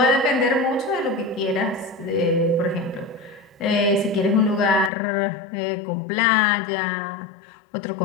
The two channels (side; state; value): right; drops out; at 4.9 s